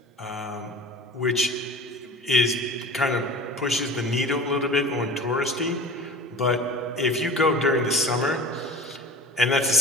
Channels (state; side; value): normal; both; correlation 0.38